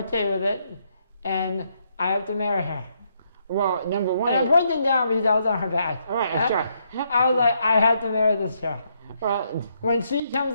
with it. And I have to marry her. Well, number one... And I'm pointing down because I was on her back. All right, sure. I was like, I had to marry this girl. Well, when she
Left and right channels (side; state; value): both; inverted; correlation -0.75